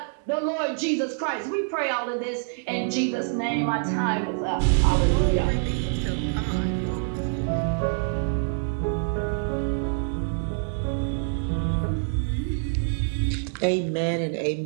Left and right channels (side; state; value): left; silent; digital silence